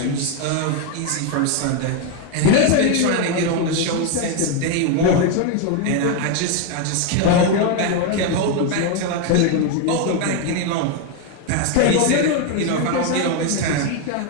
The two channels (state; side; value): different; both; correlation 0.01